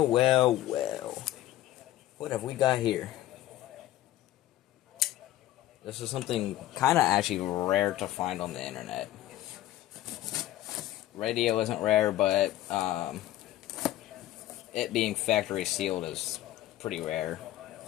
well, well. What have we got here? This is something kind of actually rare to find on the internet. Radio isn't rare, but it being factory sealed is pretty rare.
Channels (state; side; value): quieter; right; 14.3 dB